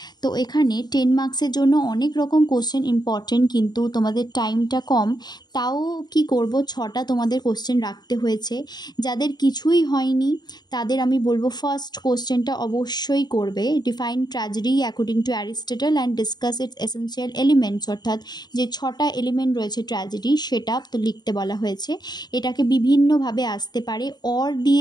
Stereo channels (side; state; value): right; late; 0.20 ms